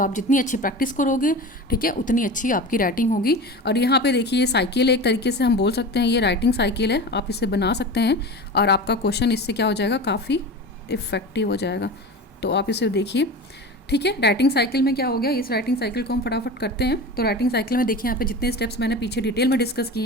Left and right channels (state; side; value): normal; both; correlation 0.31